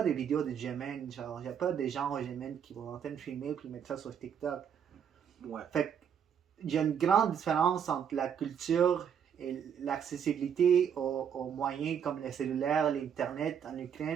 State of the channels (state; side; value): quieter; left; 8.1 dB